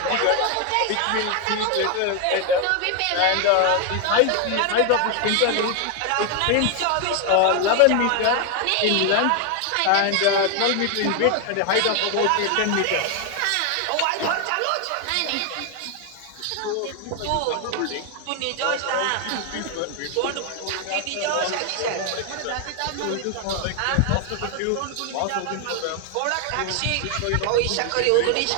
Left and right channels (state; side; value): different; both; correlation 0.01